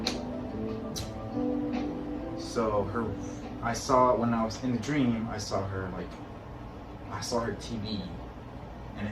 so I saw when I was in the dream, I saw her TV, and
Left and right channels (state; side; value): identical; both; correlation 1.00